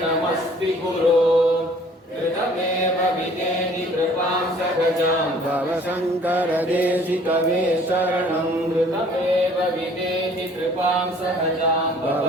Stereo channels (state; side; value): normal; both; correlation 0.54